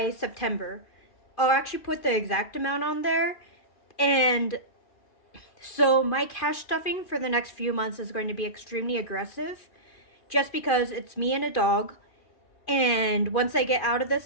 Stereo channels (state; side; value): late; right; 2.4 ms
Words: September. I'll actually put the exact amount on there. And so my cash stuffing for the next few months is going to be extremely aggressive just because it's me and a dog. And once I get out of